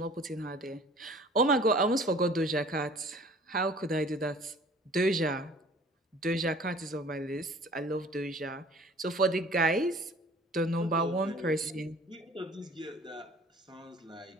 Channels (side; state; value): both; normal; correlation 0.49